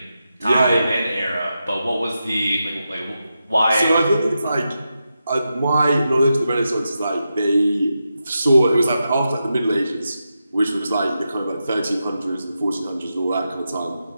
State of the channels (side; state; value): both; inverted; correlation -0.88